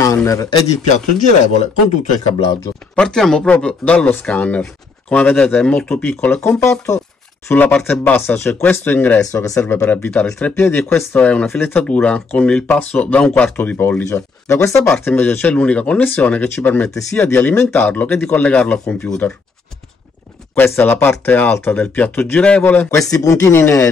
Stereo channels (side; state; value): right; quieter; 4.3 dB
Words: ed il piatto girevole con tutto il cablaggio. Partiamo proprio dallo scanner. Come vedete è molto piccolo e compatto. Sulla parte bassa c'è questo ingresso che serve per avvitare il treppiedi e questa è una filettatura con il passo da 1/4 di pollice. Da questa parte invece c'è l'unica connessione che ci permette sia di alimentarlo che di collegarlo al computer. Questa è la parte alta del piatto girevole. Questi puntini